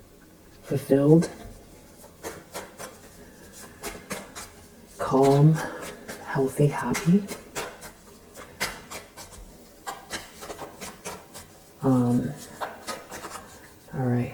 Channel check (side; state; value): both; identical; correlation 1.00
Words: fulfilled, calm, healthy, happy. All right.